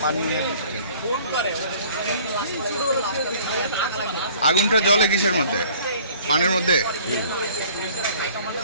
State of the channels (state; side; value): inverted; both; correlation -0.52